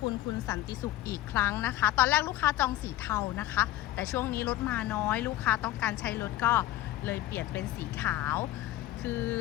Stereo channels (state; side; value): quieter; right; 15.0 dB